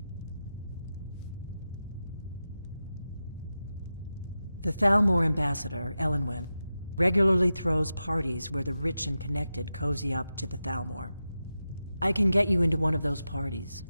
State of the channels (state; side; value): inverted; both; correlation -0.91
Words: The Thalmor ambassador, Elenwen, regularly throws parties where the rich and connected cozy up to the Thalmor. I can get you into one of those parties.